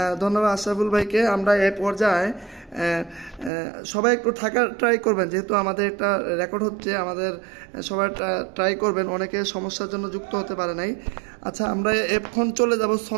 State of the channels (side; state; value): left; drops out; at 3.5 s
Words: ধন্যবাদ আশরাফুল ভাইকে। আমরা এই পর্যায়ে সবাই একটু থাকার ট্রাই করবেন, যেহেতু আমাদের একটা রেকর্ড হচ্ছে, আমাদের সবাই ট্রাই করবেন, অনেকে সমস্যার জন্য যুক্ত হতে পারে নাই। আচ্ছা, আমরা এখন চলে যাব